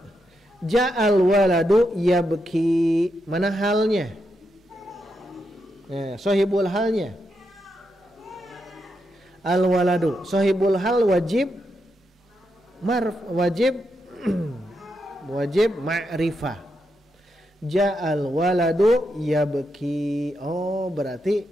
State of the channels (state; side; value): normal; both; correlation 0.83